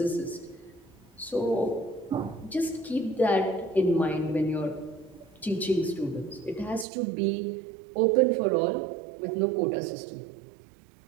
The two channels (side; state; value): left; drops out; at 6.9 s